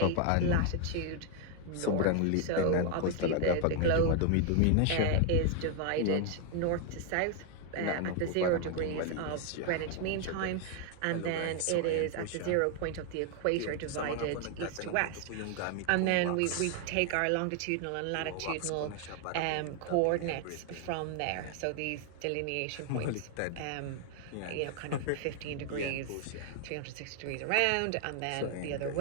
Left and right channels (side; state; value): both; different; correlation 0.00